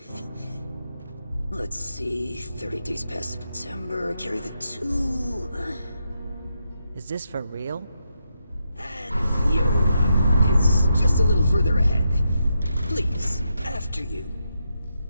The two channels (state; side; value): inverted; both; correlation -0.83